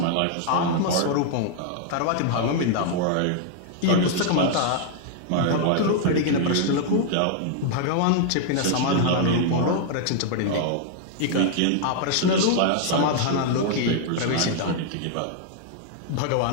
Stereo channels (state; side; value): different; both; correlation 0.00